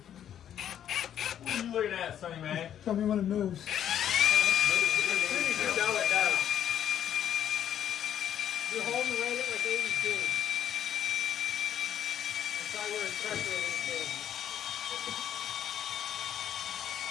What are you looking at, Sonny man? Tell me when it moves. You know it does. You're holding right at like 82. That's why we're pressure at 82.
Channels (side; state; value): right; quieter; 10.0 dB